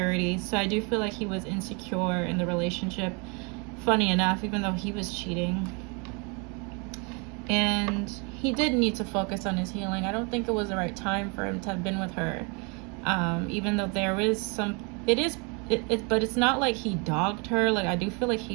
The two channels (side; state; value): left; quieter; 32.3 dB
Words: So I do feel like he was insecure in the relationship, funny enough, even though he was cheating. And he did need to focus on his healing. I don't think it was the right time for him to have been with her. Even though there is some, but it's not like he dogged her. Like, I do feel like